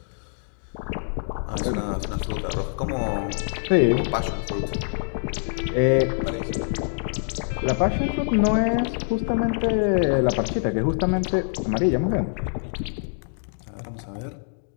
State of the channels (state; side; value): silent; right; digital silence